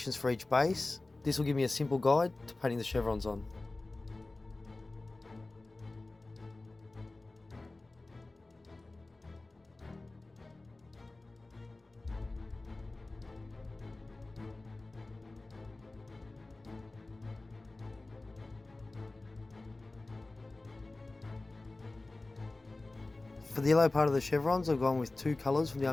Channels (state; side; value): quieter; right; 3.1 dB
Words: for each base. This will give me a simple guide to painting the chevrons on. For the yellow part of the chevrons, I've gone with 2 colours from the